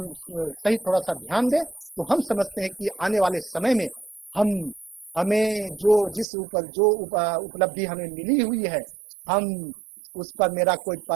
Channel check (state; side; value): drops out; left; at 6.2 s